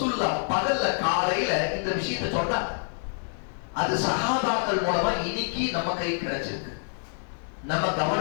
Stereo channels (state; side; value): silent; right; 60 dB below the other